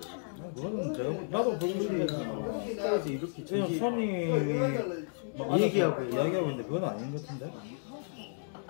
그거는 나도 불교 신자지만 국가에서 이렇게 지금 손님이 뭐 얘기하고 이야기하고 있는데 그건 아닌 것 같은데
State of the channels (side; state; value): right; silent; digital silence